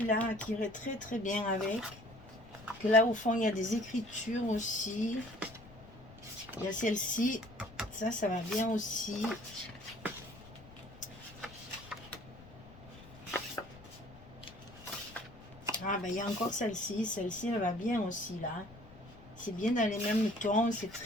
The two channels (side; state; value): left; noise; rumble, 19 dB below the sound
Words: qui irait très, très bien avec. Que là, au fond, il y a des écritures aussi. Il y a celle-ci. Ça va bien aussi. Ah, ben, il y a encore celle-ci. Celle-ci, elle va bien aussi, là. C'est bien dans les mêmes tons. C'est